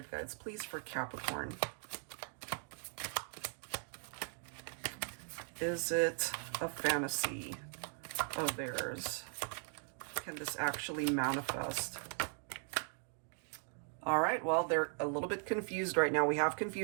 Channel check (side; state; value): left; silent; 52 dB below the other